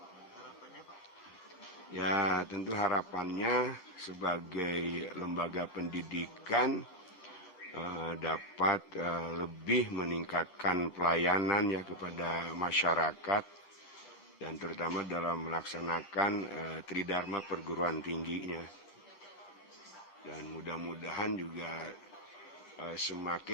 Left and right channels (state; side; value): late; right; 11 ms